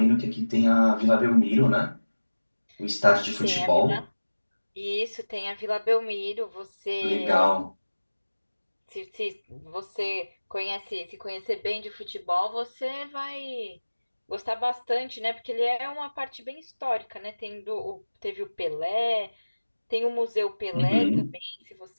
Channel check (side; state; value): both; inverted; correlation -1.00